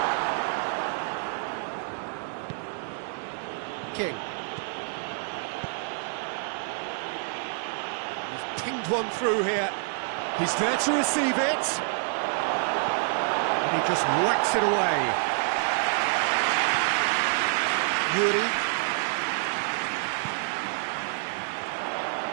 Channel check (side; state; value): left; silent; 60 dB below the other